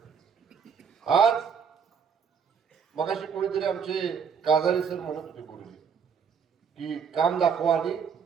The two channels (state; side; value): quieter; left; 6.7 dB